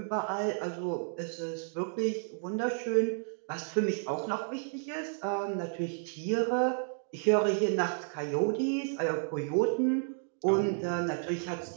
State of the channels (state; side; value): silent; left; 57 dB below the other